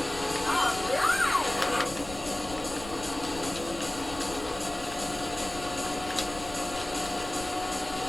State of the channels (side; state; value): left; noise; rumble, 14 dB below the sound